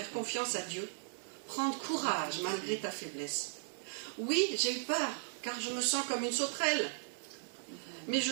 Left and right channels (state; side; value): silent; left; digital silence